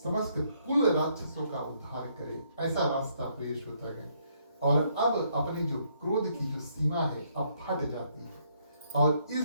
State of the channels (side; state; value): both; inverted; correlation -0.71